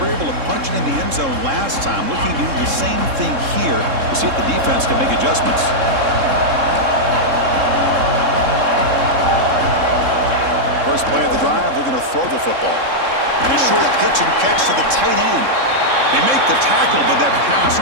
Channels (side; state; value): left; late; 3.7 ms